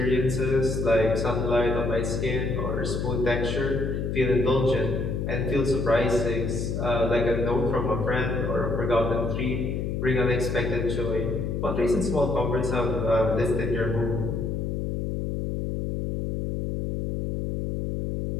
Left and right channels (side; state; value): left; noise; hum, 1 dB below the sound